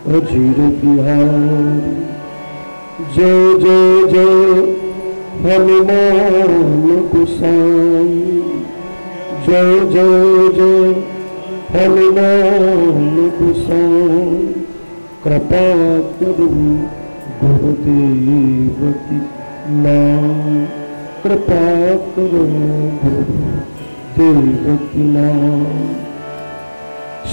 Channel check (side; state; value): both; inverted; correlation -1.00